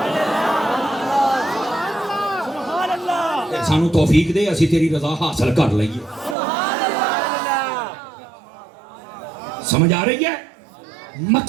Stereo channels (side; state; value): left; drops out; at 6.4 s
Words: سانو توفیق دے اسی تیری رضا حاصل کر لئیے. سمجھ آ رہی ہے؟